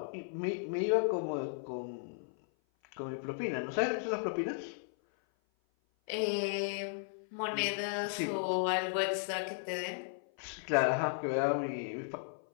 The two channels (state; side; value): silent; right; 54 dB below the other